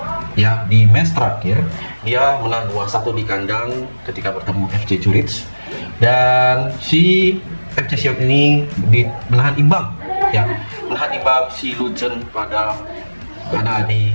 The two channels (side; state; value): both; inverted; correlation -1.00